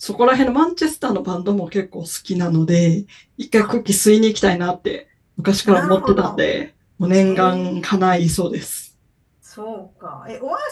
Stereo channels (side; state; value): both; identical; correlation 1.00